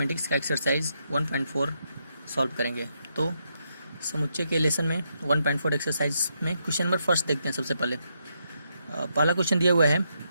का एक्सरसाइज 1.4 सॉल्व करेंगे। तो समुच्चय के लेसन में 1.4 एक्सरसाइज में क्वेश्चन नंबर फर्स्ट देखते हैं। सबसे पहले पहला क्वेश्चन दिया हुआ है,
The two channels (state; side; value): inverted; both; correlation -0.79